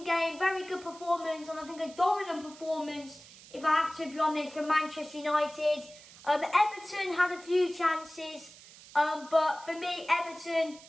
game, very good performance, and I think a dominant performance, if I have to be honest, from Manchester United. Everton had a few chances, but for me, Everton,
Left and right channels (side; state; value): right; noise; hiss, 20 dB below the sound